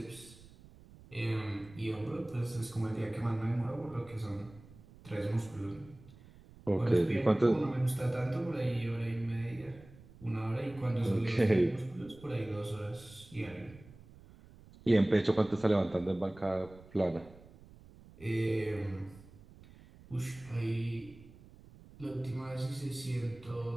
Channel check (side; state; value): right; noise; rumble, 22 dB below the sound